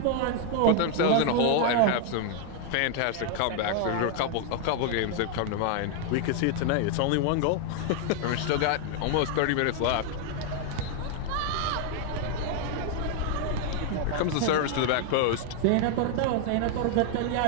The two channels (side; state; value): both; different; correlation 0.00